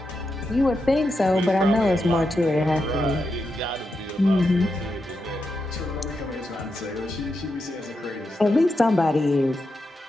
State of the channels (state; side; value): normal; both; correlation 0.86